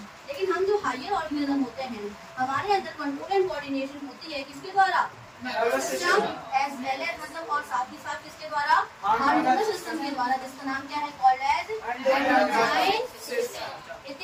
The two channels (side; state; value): both; identical; correlation 1.00